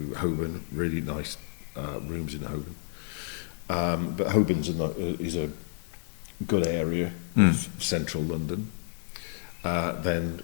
Holborn, really nice rooms in Holborn. But Holborn's is a good area of central London. Then,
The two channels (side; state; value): right; silent; digital silence